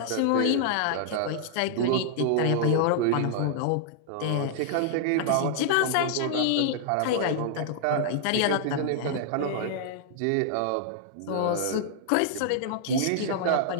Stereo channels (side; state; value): both; different; correlation -0.01